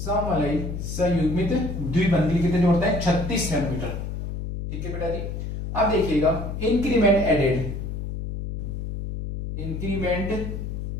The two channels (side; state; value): left; noise; hum, 5 dB below the sound